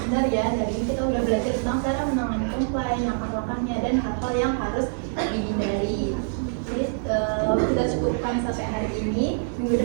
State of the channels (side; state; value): left; silent; 60 dB below the other